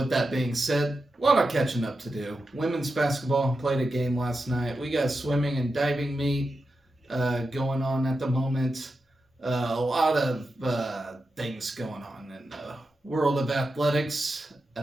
that being said, a lot of catching up to do. Women's basketball played a game last night. We got swimming and diving meet going on at the moment. A lot of things going on in the world of athletics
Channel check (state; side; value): normal; both; correlation 0.89